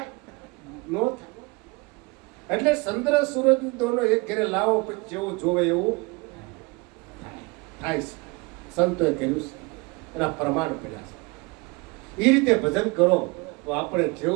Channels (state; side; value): quieter; left; 26.8 dB